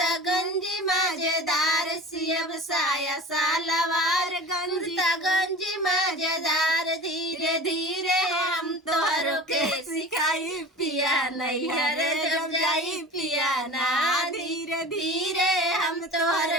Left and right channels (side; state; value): both; normal; correlation 0.36